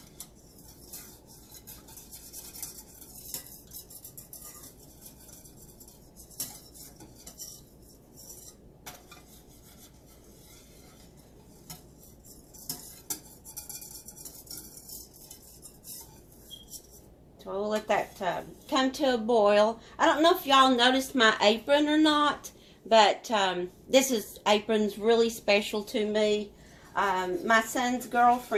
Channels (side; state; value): both; identical; correlation 1.00